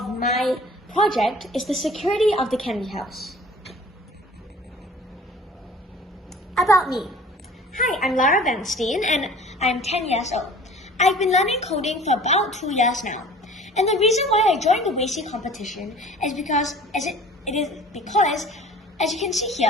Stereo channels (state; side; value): normal; both; correlation 0.47